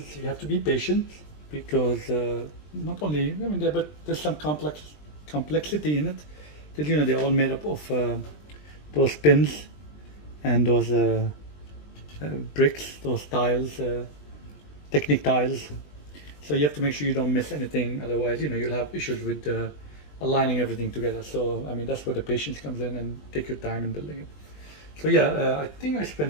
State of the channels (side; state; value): right; late; 20 ms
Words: you have to be patient because not only, I mean, but there's some complexity in it. That, you know, they're all made up of those pins and those bricks, those tiles, Technic tiles. So you have to make sure you don't miss anything, otherwise, you know, you'll have issues with aligning everything together. So, I mean, that's where the patience comes in, and take your time in building it. So yeah, I think I